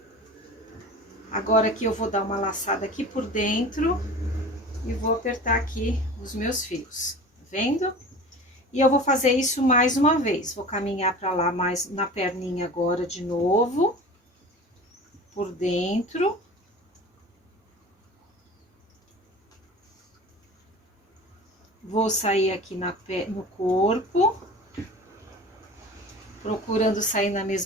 Agora aqui eu vou dar uma laçada aqui por dentro e vou apertar aqui os meus fios, tá vendo? E eu vou fazer isso mais uma vez. Vou caminhar pra lá mais na perninha agora de novo, por dentro. Vou sair aqui no corpo, procurando sair na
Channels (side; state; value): both; normal; correlation 0.38